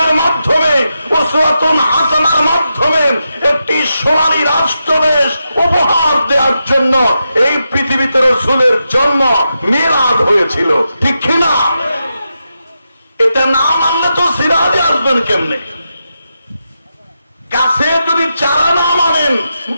মাধ্যমে, উসওয়াতুন হাসানার মাধ্যমে একটি সোনালী রাষ্ট্রদেশ উপহার দেওয়ার জন্য এই পৃথিবীতে রাসূলের জন্ম মিলাদ হয়েছিল, ঠিক কিনা? এটা না মানলে তো সিরাজে আসবেন কেমনে? গাছে যদি চারা না মানেন,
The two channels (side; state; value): both; inverted; correlation -0.87